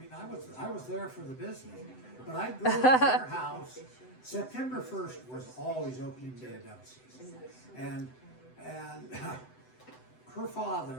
I was there for the business, but I'd go to their house. September 1st was always opening day of dove season, and her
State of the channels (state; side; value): late; right; 7.9 ms